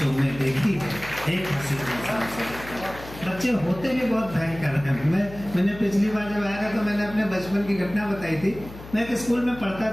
में देखी है एक हंसी इंसान सरीखी। बच्चे होते भी बहुत भयंकर हैं। मैंने पिछली बार जब आया था तो मैंने अपने बचपन की घटना बताई थी। मैं एक स्कूल में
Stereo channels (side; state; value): left; noise; hum, 15 dB below the sound